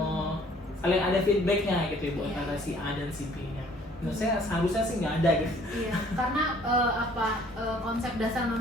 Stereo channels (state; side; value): normal; both; correlation 0.57